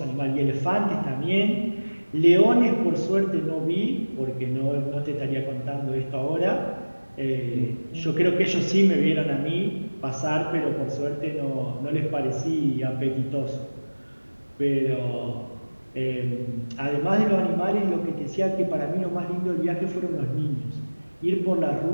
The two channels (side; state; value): both; inverted; correlation -1.00